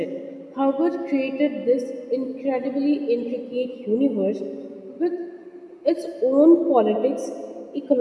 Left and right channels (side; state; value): both; identical; correlation 1.00